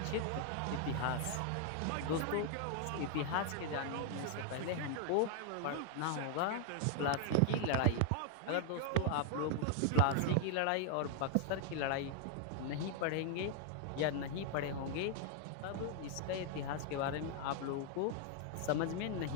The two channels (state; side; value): different; both; correlation 0.00